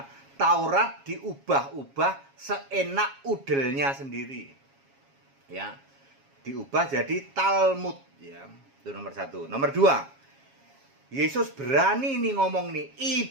Taurat diubah-ubah seenak udelnya sendiri. Ya. Diubah jadi Talmud ya. Itu nomor 1. Nomor 2. Yesus berani nih ngomong nih,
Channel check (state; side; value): late; left; 7.3 ms